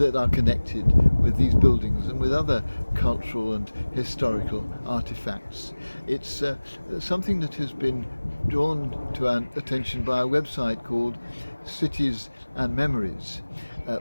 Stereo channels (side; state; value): both; inverted; correlation -1.00